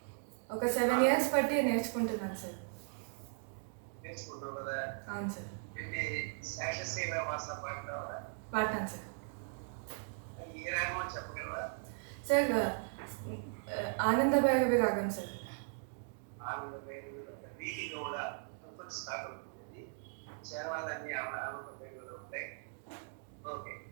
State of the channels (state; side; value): silent; left; digital silence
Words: ఒక 7 years పట్టి నేర్చుకుంటున్నాను సార్. నేర్చుకుంటావు కదా? అవును సార్. ఏంటి శేషశైలవాస పాడతావా? పాడతాను సార్. అది ఏ రాగమో చెప్పగలవా? సార్ ఆనంద భైరవి రాగం సార్. ఆనంద భైరవిలో వీటిలో కూడా కొంచెం స్టార్ట్ అవుతుంది. చేరవాలన్నీ ఆనంద భైరవిలో ఉంటాయి. ఓకే,